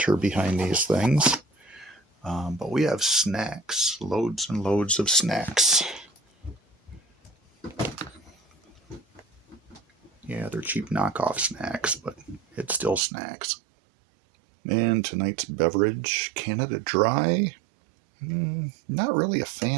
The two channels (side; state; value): left; drops out; at 13.0 s